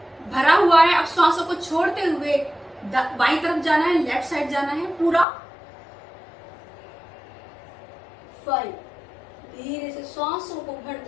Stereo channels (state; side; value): drops out; right; at 5.2 s